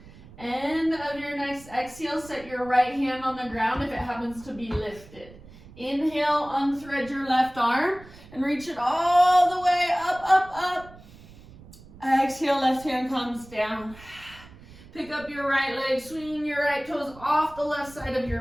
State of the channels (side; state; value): right; noise; rumble, 21 dB below the sound